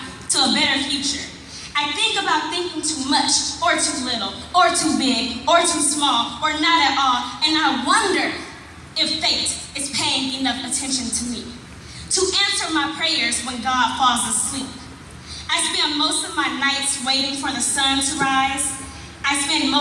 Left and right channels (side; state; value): both; identical; correlation 1.00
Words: better future. I think about thinking too much, or too little, or too big, or too small, or not at all, and I wonder if fate is paying enough attention to me to answer my prayers when God falls asleep. I spend most of my nights waiting for the sun to rise. I spend